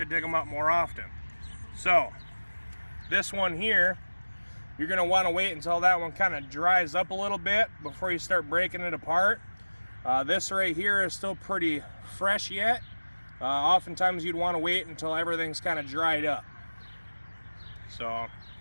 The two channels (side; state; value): both; inverted; correlation -1.00